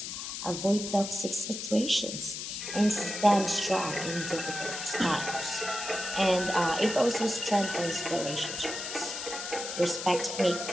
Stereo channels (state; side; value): noise; left; hiss, 6 dB below the sound